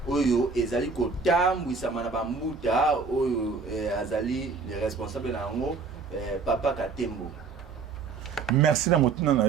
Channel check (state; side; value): quieter; left; 4.7 dB